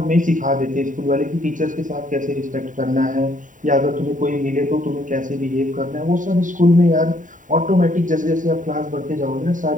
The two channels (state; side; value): late; left; 0.38 ms